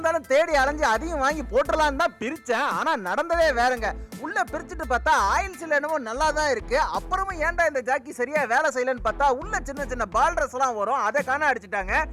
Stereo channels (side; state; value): both; identical; correlation 1.00